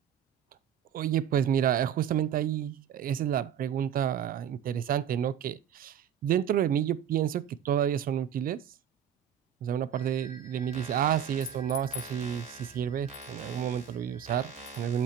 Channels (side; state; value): left; quieter; 9.3 dB